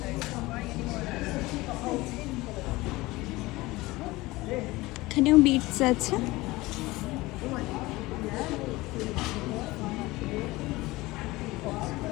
এখানেও বিটস আছে।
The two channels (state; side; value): quieter; right; 20.4 dB